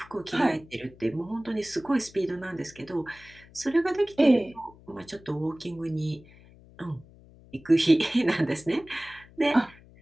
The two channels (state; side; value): noise; left; hum, 24 dB below the sound